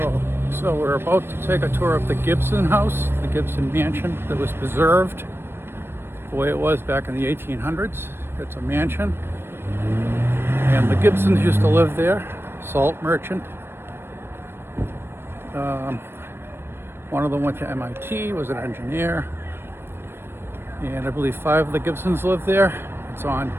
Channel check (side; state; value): left; late; 0.11 ms